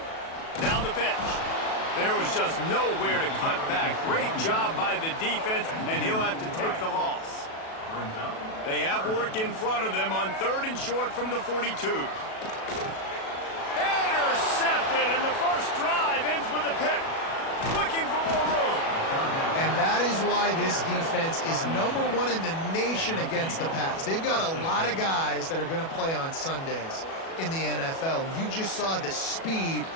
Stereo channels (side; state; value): right; late; 37 ms